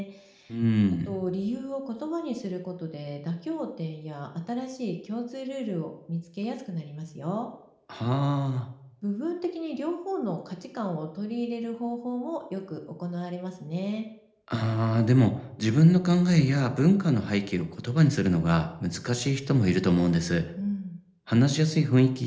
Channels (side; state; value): both; identical; correlation 1.00